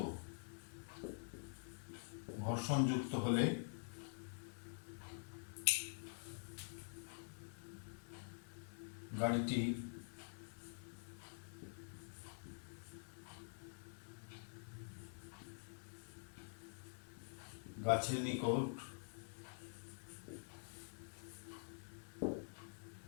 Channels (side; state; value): right; silent; digital silence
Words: যুক্ত হলে গাড়িটি গাছের নিকট